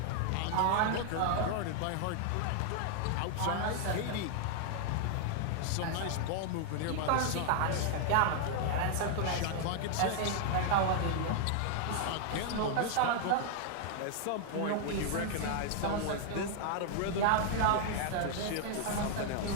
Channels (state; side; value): different; both; correlation 0.00